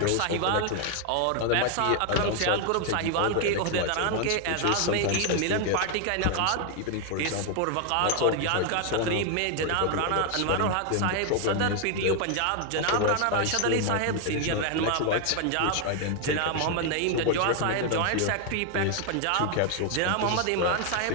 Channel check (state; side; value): different; both; correlation 0.00